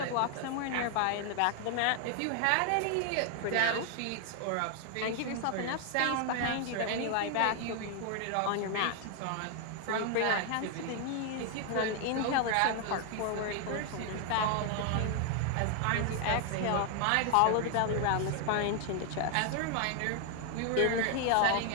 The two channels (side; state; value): both; different; correlation 0.00